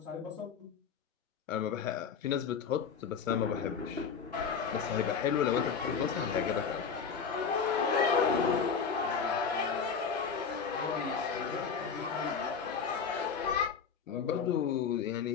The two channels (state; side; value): quieter; right; 6.3 dB